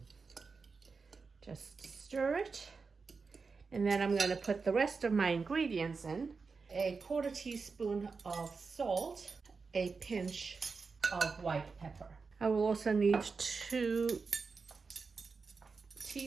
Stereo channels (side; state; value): left; quieter; 4.7 dB